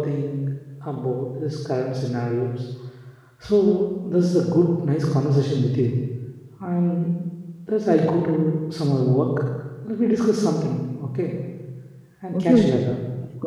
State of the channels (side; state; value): both; identical; correlation 1.00